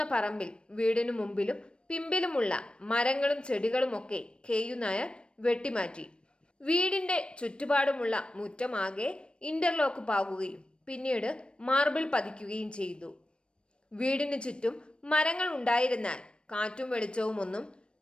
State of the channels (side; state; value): right; late; 0.056 ms